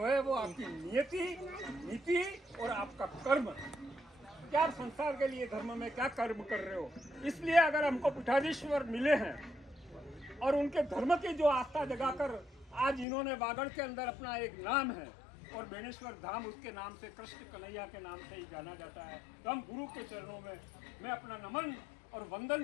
है वो आपकी नियति, नीति और आपका कर्म, क्या आप संसार के लिए धर्म में क्या कर्म कर रहे हो। इसलिए अगर हमको पीठाधीश्वर मिले हैं और उनके धर्म की जो आस्था जगाकर आज इन्होंने वागड़ के अंदर अपना एक नाम है और बेनेश्वर धाम उसके नाम से, कृष्ण कन्हैया के नाम से ही जाना जाता है, तो हम गुरु के चरणों में मैं अपना नमन और वंदन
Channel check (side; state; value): right; drops out; at 13.1 s